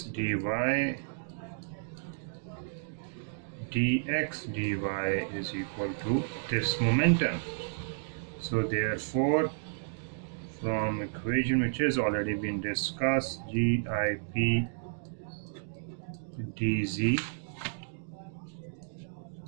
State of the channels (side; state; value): left; silent; digital silence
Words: dy is equal to this momentum. So therefore, from equation which has already been discussed, GIP dz